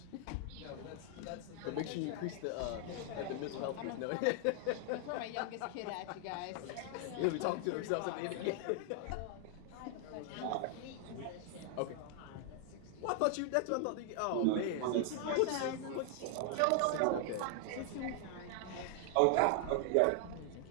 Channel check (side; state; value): both; different; correlation 0.00